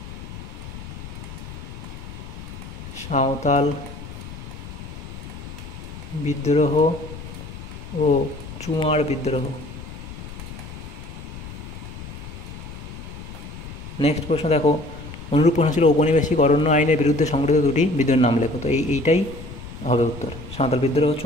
সাঁওতাল বিদ্রোহ ও চুয়ার বিদ্রোহ। নেক্সট প্রশ্ন দেখো, অনুরূপ প্রশ্ন ছিল ঔপনিবেশিক অরণ্য আইনের বিরুদ্ধে সংগঠিত দুটি বিদ্রোহের নাম লেখো। তো এইটাই হবে উত্তর, সাঁওতাল বিদ্রোহ ও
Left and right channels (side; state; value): left; noise; rumble, 12 dB below the sound